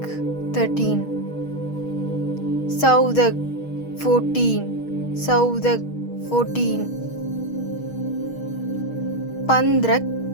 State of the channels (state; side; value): late; right; 6.3 ms